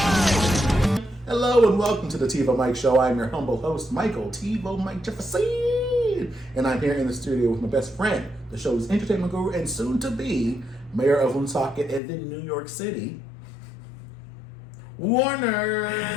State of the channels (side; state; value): right; drops out; at 12.0 s